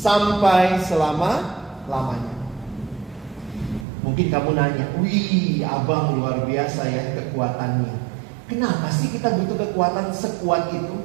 selama-lamanya. Mungkin kamu nanya, wih abang luar biasa ya kekuatannya. Kenapa sih kita butuh kekuatan sekuat itu?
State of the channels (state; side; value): drops out; left; at 3.9 s